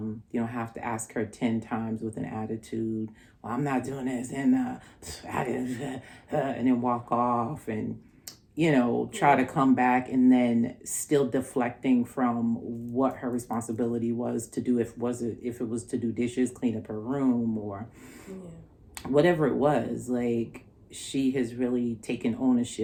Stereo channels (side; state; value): both; identical; correlation 1.00